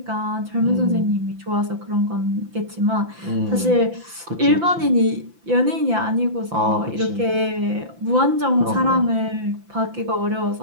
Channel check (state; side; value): late; left; 5.9 ms